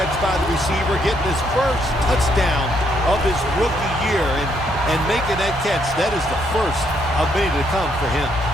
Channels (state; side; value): normal; both; correlation 0.73